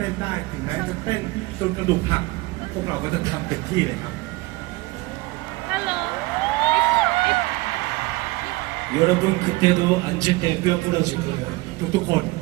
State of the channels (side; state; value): left; quieter; 21.9 dB